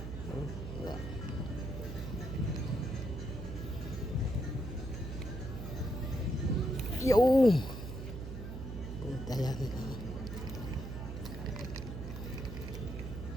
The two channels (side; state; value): right; noise; hum, 7 dB below the sound